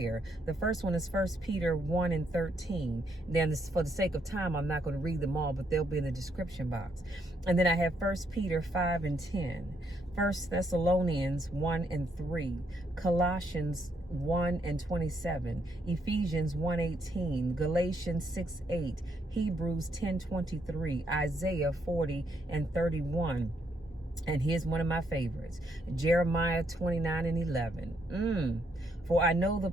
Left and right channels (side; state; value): both; normal; correlation 0.74